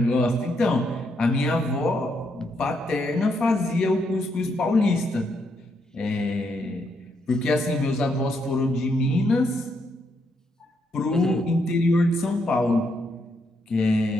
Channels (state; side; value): normal; both; correlation 0.77